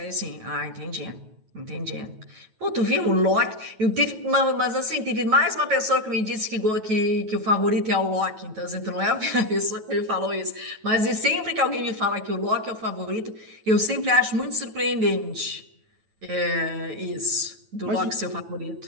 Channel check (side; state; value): left; late; 9.2 ms